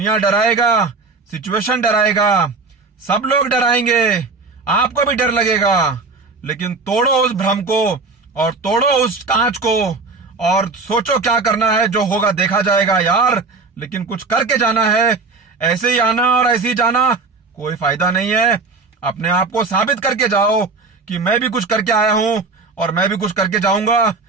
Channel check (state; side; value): quieter; left; 4.0 dB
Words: डराएगा, सिचुएशन डराएगा, सब लोग डराएंगे, आपको भी डर लगेगा, लेकिन तोड़ो उस भ्रम को और तोड़ो उस कांच को और सोचो क्या करना है, जो होगा देखा जाएगा यार, लेकिन कुछ करके जाना है। ऐसे ही आना और ऐसे ही जाना कोई फायदा नहीं है। अपने आप को साबित करके जाओ कि मैं भी कुछ करके आया हूं और मैं भी कुछ करके जाऊंगा,